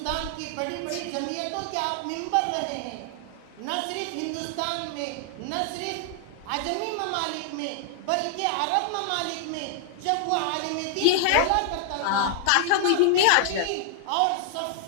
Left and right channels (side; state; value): both; different; correlation 0.00